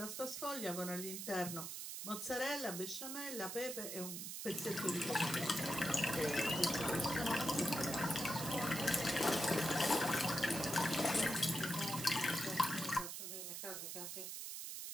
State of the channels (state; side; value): noise; right; hiss, 6 dB below the sound